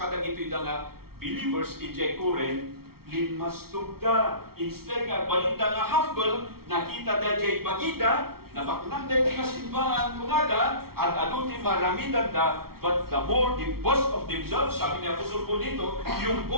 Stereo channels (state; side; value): late; left; 0.94 ms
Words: ito'y nga believers in Jaykuren, linmas tugda. Instead nga, balita nga humble, nakita da jay bagida, nabaknang da nga simbahan kumada, at aduti maramidan da, but the more they boast of themselves, sabi niya Apostol po dito, yung